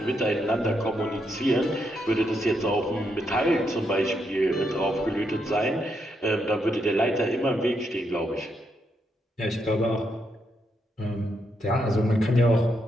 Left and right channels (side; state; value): both; normal; correlation 0.79